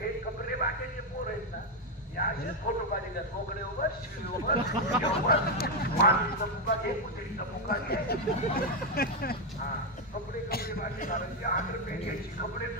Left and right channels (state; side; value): normal; both; correlation 0.04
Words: कपडे बाकीचे पोर आहेत ना हे असेच फोटो काढले मोकळे उभं शिवी उभं मातीचा मुका घे कुत्रीचा मुका घे. हा कपडे बाकी घालायचे 8 रुपये घ्यायची कपडे